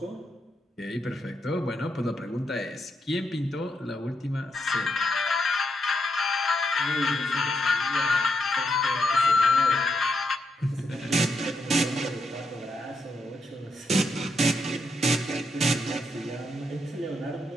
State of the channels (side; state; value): both; normal; correlation 0.80